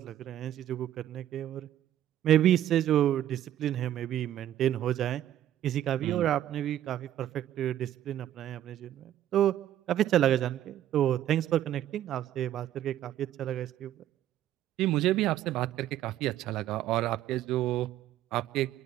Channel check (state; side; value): quieter; left; 12.0 dB